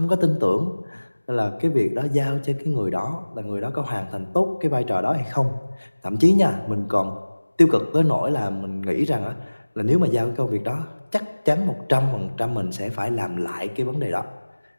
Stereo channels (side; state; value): both; inverted; correlation -1.00